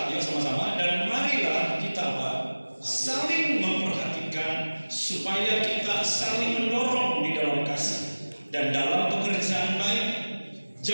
ya sama-sama, dan marilah kita apa? Saling memperhatikan supaya kita saling mendorong di dalam kasih dan dalam pekerjaan baik.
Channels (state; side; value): inverted; both; correlation -1.00